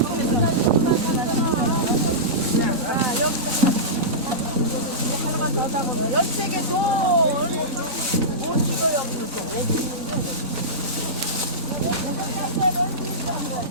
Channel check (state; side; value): normal; both; correlation -0.16